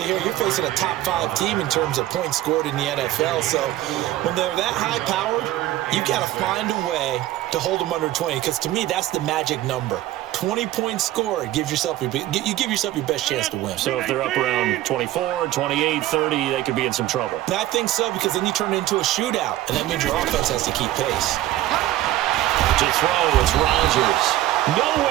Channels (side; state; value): left; quieter; 14.8 dB